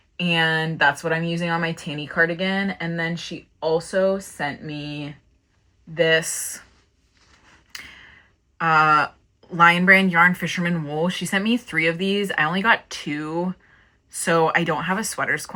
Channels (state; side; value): identical; both; correlation 1.00